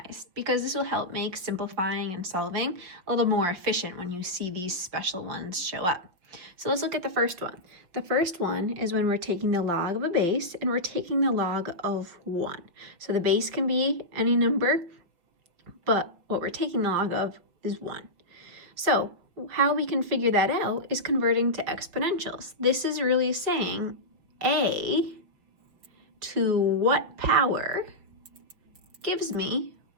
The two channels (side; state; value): left; late; 5.6 ms